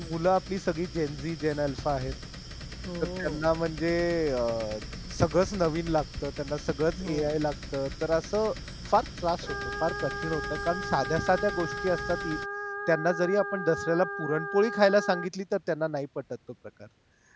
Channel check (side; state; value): both; identical; correlation 1.00